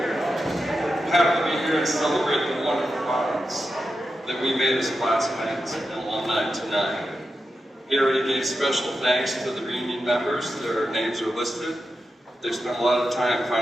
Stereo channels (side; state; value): both; normal; correlation 0.89